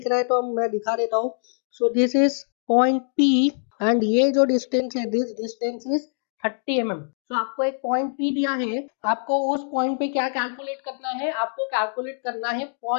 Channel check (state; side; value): silent; right; digital silence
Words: रहा है तो मैं दिखा देता हूँ. सो this is point P and ये जो डिस्टेंस है, दिस डिस्टेंस इज 30 mm. तो आपको एक पॉइंट P दिया है, आपको उस पॉइंट पे क्या कैलकुलेट करना है, आपको कैलकुलेट करना है